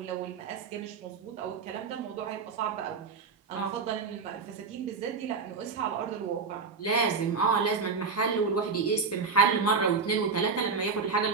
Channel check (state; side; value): quieter; left; 5.0 dB